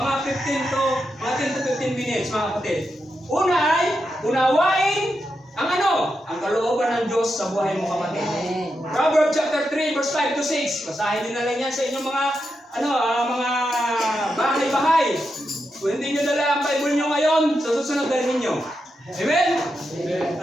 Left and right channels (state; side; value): normal; both; correlation 0.86